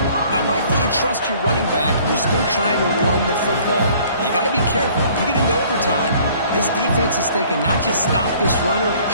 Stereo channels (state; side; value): inverted; both; correlation -0.56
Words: I like that you trust your running back and you're still trying to run the football. You got to be careful. You get into overtime, this defense is thinking not just stop this runner, but